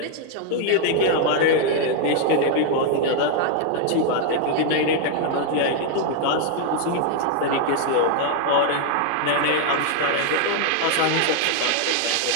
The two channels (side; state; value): both; different; correlation 0.00